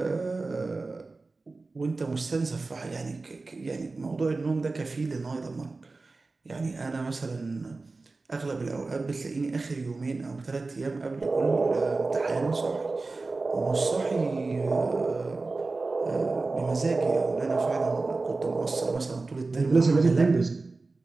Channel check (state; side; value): quieter; left; 3.6 dB